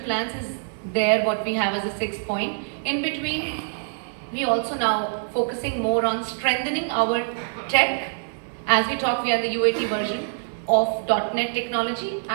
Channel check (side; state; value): left; silent; digital silence